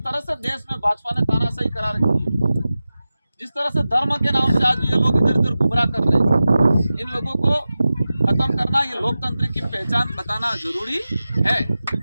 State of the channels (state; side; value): inverted; both; correlation -0.95